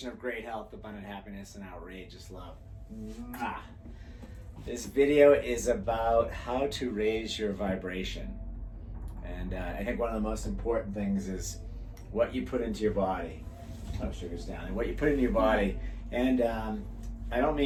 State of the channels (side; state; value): both; identical; correlation 1.00